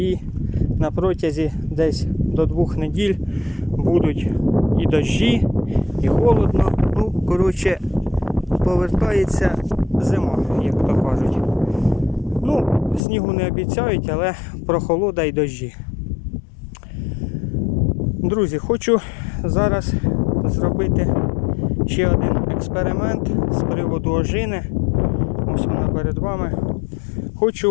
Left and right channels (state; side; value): drops out; right; at 13.0 s